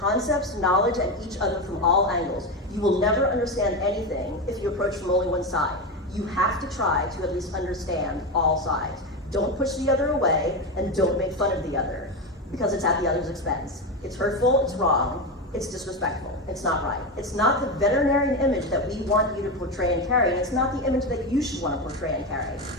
concepts, knowledge, and each other from all angles. You will never understand anything if you approach from only one side. You have to try to at least understand all sides. Don't push the other away, and don't make fun of the other, because it's at the other's expense. It's hurtful, it's wrong, it's disrespectful, it's not right. It's not the veterinarian image that we want you to portray and carry, and it's not the image that you should want to portray and carry.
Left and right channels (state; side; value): normal; both; correlation 0.16